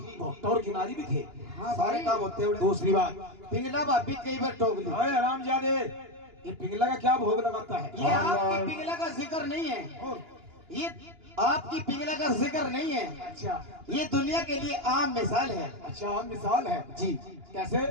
घोट्टा और किनारी भी थे। सारे काम होते हुए दूसरी बात पिंगला भाभी कई बार टोक ली अरे हरामजादे ये पिघला का क्या भोग लगाता है? ये आपकी पिघला का जिक्र नहीं है, और ये आपकी पिघला का जिक्र नहीं है, अच्छा ये दुनिया के लिए आम मिसाल है। अच्छा, हम मिसाल है जी, कैसे?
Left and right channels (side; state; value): left; late; 2.9 ms